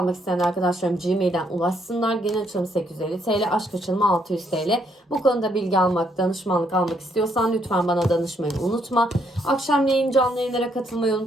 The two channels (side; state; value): both; normal; correlation 0.72